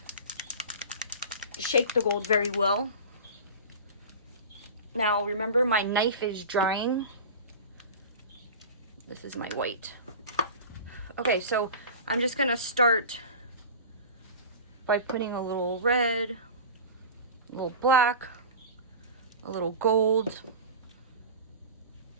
shake the gold very well. Now remember, my knife is drying. This is my white. Okay, so I'm just gonna start by putting a little red, a little black, a little gold,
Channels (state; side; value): inverted; both; correlation -0.34